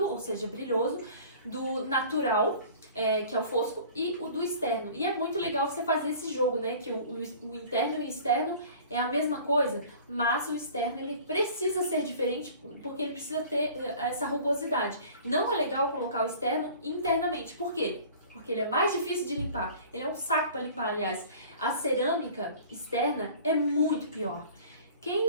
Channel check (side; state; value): both; inverted; correlation -0.46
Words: ou seja, brilhoso, do natural, que é o fosco, e o do externo. E é muito legal você fazer esse jogo, né? Que o interno e o externo é a mesma coisa, mas o externo ele precisa ser diferente porque ele precisa ter essa rugosidade. Não é legal colocar o externo internamente. Por quê? Porque ele é mais difícil de limpar. Ele é um saco para limpar, aliás. A cerâmica externa é muito pior.